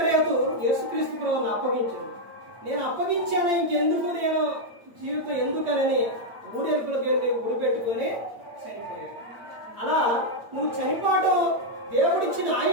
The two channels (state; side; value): late; left; 8.6 ms